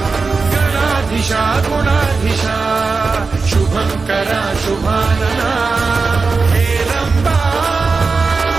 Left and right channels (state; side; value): quieter; left; 4.4 dB